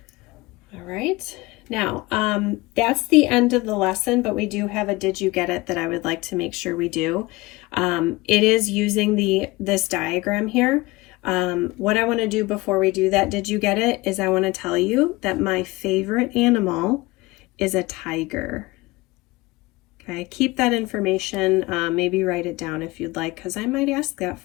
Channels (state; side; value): quieter; right; 21.5 dB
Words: All right. Now, that's the end of the lesson, but we do have a did you get it that I would like to make sure we do. It is using this diagram here. What I want to do before we do that did you get it is I want to tell you that my favorite animal is a tiger. Okay, keep that information, maybe write it down if you'd like, because I might ask that